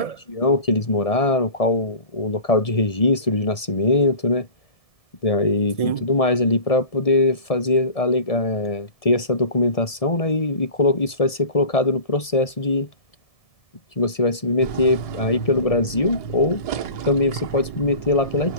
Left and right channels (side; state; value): right; late; 1.7 ms